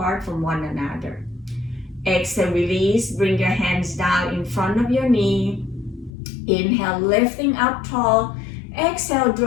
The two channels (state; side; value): drops out; right; at 6.1 s